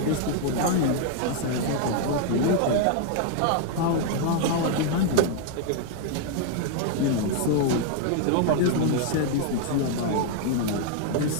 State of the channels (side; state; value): both; different; correlation 0.00